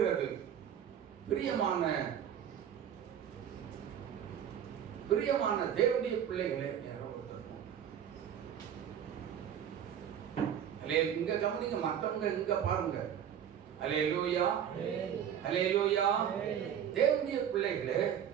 பிரியமான பிரியமான தேவனுடைய பிள்ளைகளே, இங்க கவனிங்க, மற்றவங்க இங்க பாருங்க. அல்லேலூயா, அல்லேலூயா. தேவனுடைய பிள்ளைகளே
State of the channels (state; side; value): quieter; left; 9.2 dB